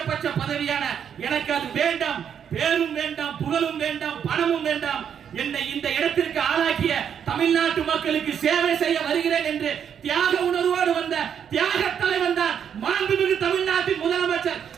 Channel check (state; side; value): quieter; left; 8.2 dB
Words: பதவியான எனக்கு அது வேண்டாம், பேரும் வேண்டாம், புகழும் வேண்டாம், பணமும் வேண்டாம். என்னை இந்த இடத்திற்கு ஆளாக்கிய தமிழ்நாட்டு மக்களுக்கு சேவை செய்ய வருகிறேன் என்று தியாக உணர்வோடு வந்த தியாக தலைவன் தான் மாண்புமிகு தமிழ்நாட்டின் முதலமைச்சர்